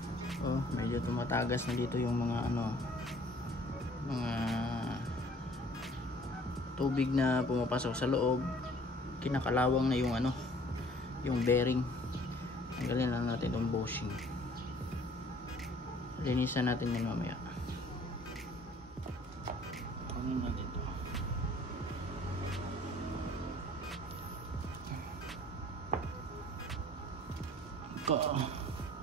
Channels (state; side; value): normal; both; correlation 0.54